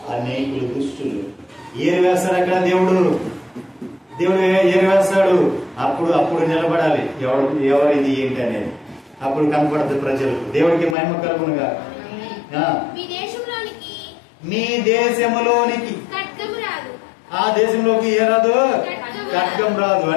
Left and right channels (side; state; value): right; drops out; at 11.0 s